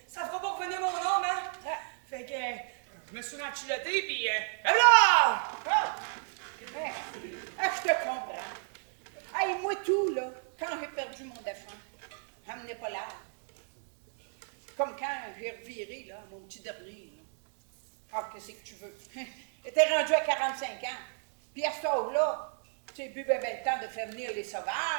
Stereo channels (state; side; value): silent; left; 56 dB below the other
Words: ça fera pas revenir mon homme, hein. Fait que, je me suis renchilotté, puis, là! Ah! Hein? Ah, je te comprends. Hey, moi tout, là, quand j'ai perdu mon défunt, j'emmenais pas l'âge. Comme quand j'ai reviré, là, mon petit dernier, là. Ah, qu'est-ce que tu veux? J'étais rendu à 45 ans. Puis à cet âge-là, tu sais, plus ben le temps de faire venir les